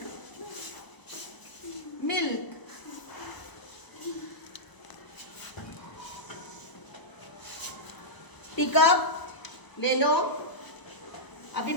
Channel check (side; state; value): right; late; 1.0 ms